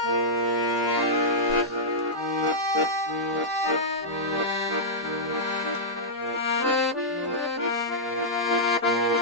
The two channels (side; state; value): both; normal; correlation -0.10